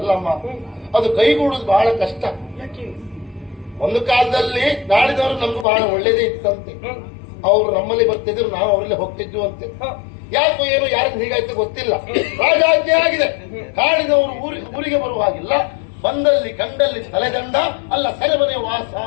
ಅದು ಕೈಗೂಡುದು ಬಹಳ ಕಷ್ಟ. ಒಂದು ಕಾಲದಲ್ಲಿ ನಾಡಿದವರು ನಮ್ಗೆ ಬಹಳ ಒಳ್ಳೇದೇ ಇತ್ತಂತೆ. ಅವ್ರು ನಮ್ಮಲ್ಲಿ ಬರ್ತಿದ್ರು, ನಾವು ಅವರಲ್ಲಿ ಹೋಗ್ತಿದ್ವು ಅಂತೆ. ಯಾಕೋ ಏನು ಯಾರಿಗೆ ಹೀಗಾಯ್ತು ಗೊತ್ತಿಲ್ಲ. ರಾಜಾಜ್ಞೆ ಆಗಿದೆ, ಕಾಡಿದವರು ಊರಿಗೆ ಬರುವ ಹಾಗಿಲ್ಲ. ಬಂದಲ್ಲಿ ಕಂಡಲ್ಲಿ ತಲೆದಂಡ, ಅಲ್ಲ ಸೆರೆಮನೆ ವಾಸ.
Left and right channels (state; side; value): drops out; right; at 5.7 s